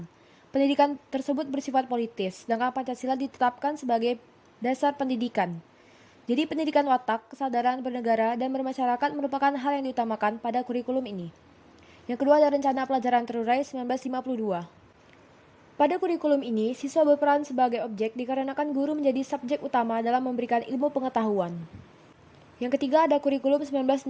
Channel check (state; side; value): identical; both; correlation 1.00